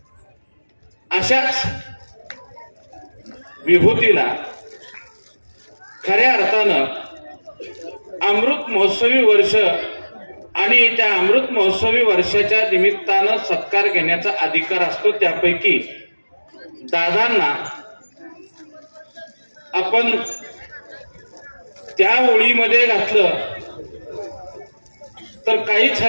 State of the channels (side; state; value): both; inverted; correlation -1.00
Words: अशाच विभूतीला खऱ्या अर्थानं अमृत महोत्सवी वर्ष आणि त्या अमृत महोत्सवी वर्षाच्या निमित्तानं सत्कार घेण्याचा अधिकार असतो. त्यापैकी दादांना आपण त्या ओळीमध्ये घातलं तर काहीच